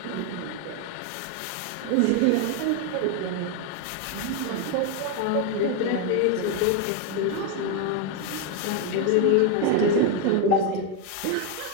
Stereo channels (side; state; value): both; different; correlation 0.01